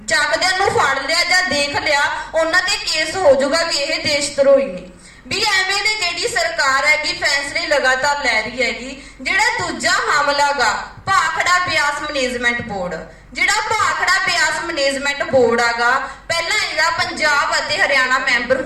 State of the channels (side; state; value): both; identical; correlation 1.00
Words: ਚੱਕਦਿਆਂ ਨੂੰ ਫੜ ਲਿਆ ਜਾਂ ਦੇਖ ਲਿਆ, ਉਹਨਾਂ ਤੇ ਕੇਸ ਹੋ ਜਾਊਗਾ ਕਿ ਇਹ ਦੇਸ਼ ਧਰੋਹੀ ਨੇ। ਵੀ ਐਵੇਂ ਦੀ ਜਿਹੜੀ ਸਰਕਾਰ ਹੈਗੀ ਫੈਸਲੇ ਲਗਾਤਾਰ ਲੈ ਰਹੀ ਹੈਗੀ। ਜਿਹੜਾ ਦੂਜਾ ਹਮਲਾ ਗਾ ਭਾਖੜਾ ਬਿਆਸ ਮੈਨੇਜਮੈਂਟ ਬੋਰਡ, ਜਿਹੜਾ ਭਾਖੜਾ ਬਿਆਸ ਮੈਨੇਜਮੈਂਟ ਬੋਰਡ ਆਗਾ, ਪਹਿਲਾਂ ਇਹਦਾ ਪੰਜਾਬ ਅਤੇ ਹਰਿਆਣਾ ਮੈਂਬਰ